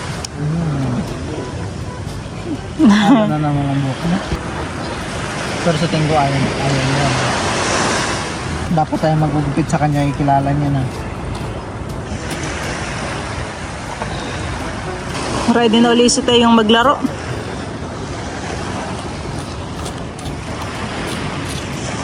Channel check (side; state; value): both; identical; correlation 1.00